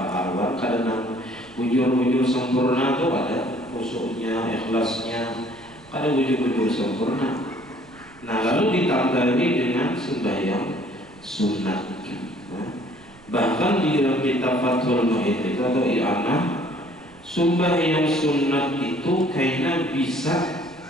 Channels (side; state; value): right; noise; rumble, 26 dB below the sound